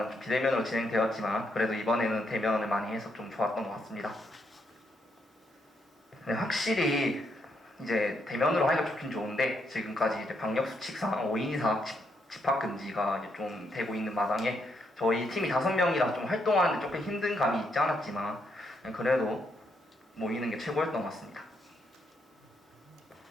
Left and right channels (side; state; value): both; normal; correlation 0.77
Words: 비대면으로 진행되었지만 그래도 이번에는 대면을 많이 해서 좀 좋았던 것 같습니다. 네, 확실히 이제 대면으로 하기가 좋긴 좋은데 지금까지 이제 방역 수칙상 5인 이상 집합 금지가 이제 좀 되고 있는 마당에 저희 팀이 5명이라 좀 활동하는데 조금 힘든 감이 있지 않았지만 그래도 모이는 게 최고였던 것 같습니다.